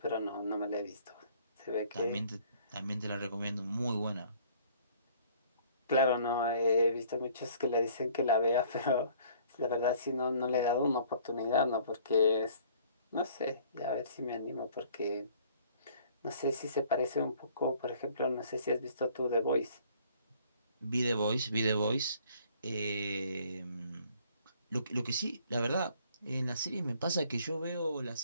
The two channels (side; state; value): both; inverted; correlation -0.57